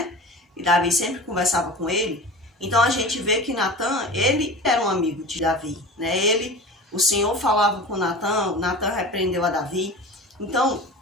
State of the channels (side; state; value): both; normal; correlation 0.34